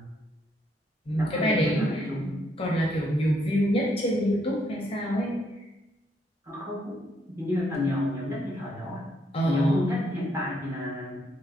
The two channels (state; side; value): normal; both; correlation 0.73